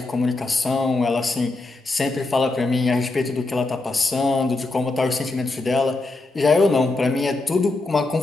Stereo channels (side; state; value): right; quieter; 3.2 dB